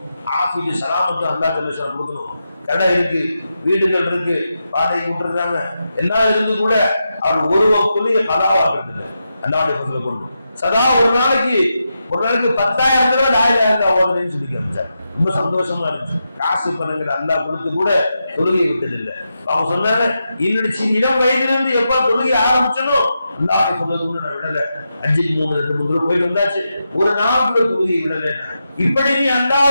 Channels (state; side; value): inverted; both; correlation -0.87